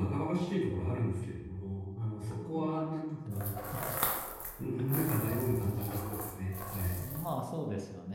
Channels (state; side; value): identical; both; correlation 1.00